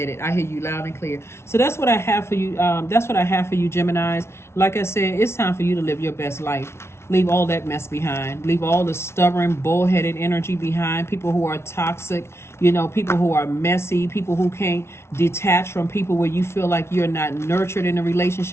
it. I hear you loud and clear. So that's what I have for you. That's what I have for you, Geminis. Like I said, it's time for you to live your best life. Leave all that mess behind. Leave all the stubborn, bullheaded energy behind. People who are toxic, people who are messy, people who can't detach from people where you feel like you're not nurtured in a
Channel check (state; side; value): late; right; 0.13 ms